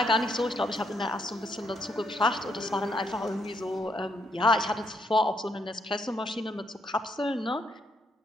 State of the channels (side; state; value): both; normal; correlation 0.74